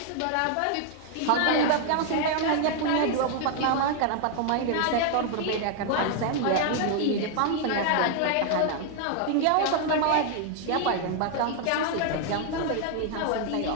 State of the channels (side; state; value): both; different; correlation 0.00